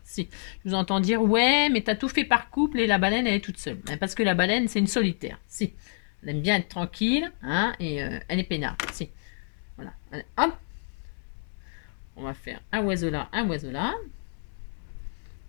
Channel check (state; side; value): silent; right; 59 dB below the other